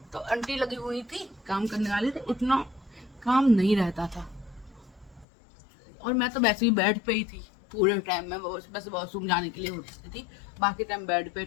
तो आंटी लगी हुई थी काम करने वाली, तो उतना काम नहीं रहता था, और मैं तो वैसे ही बेड पे ही थी पूरे टाइम में, बस वॉशरूम जाने के लिए होती थी, बाकी टाइम बेड पे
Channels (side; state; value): right; drops out; at 5.2 s